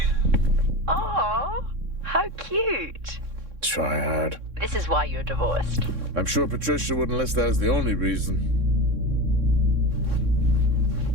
Oh, how cute. Try hard. This is why you're divorced. I'm sure Patricia wouldn't list that as the only reason.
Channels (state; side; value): late; left; 3.6 ms